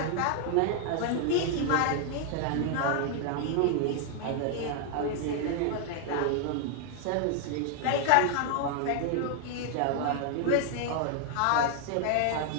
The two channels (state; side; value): different; both; correlation 0.00